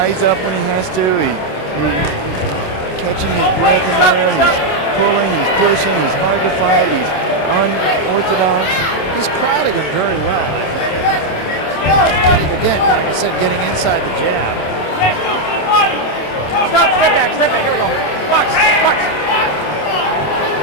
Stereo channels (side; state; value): right; late; 27 ms